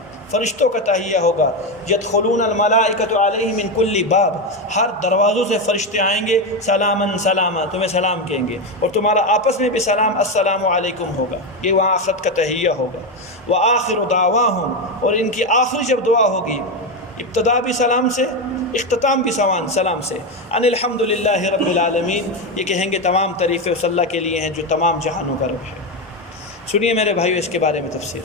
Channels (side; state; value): both; normal; correlation 0.12